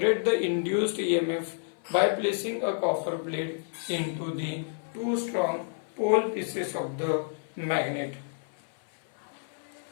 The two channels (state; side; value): silent; right; 58 dB below the other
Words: induced EMF by placing a copper plate into the two strong pole pieces of the magnet.